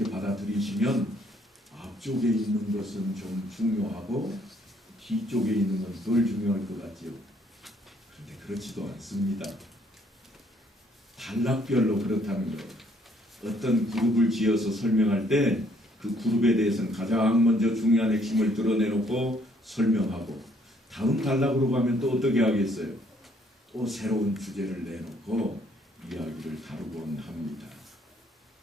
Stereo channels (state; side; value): normal; both; correlation 0.65